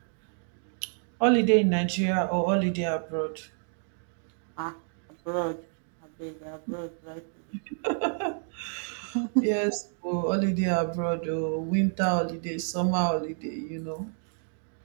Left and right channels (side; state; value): left; silent; 58 dB below the other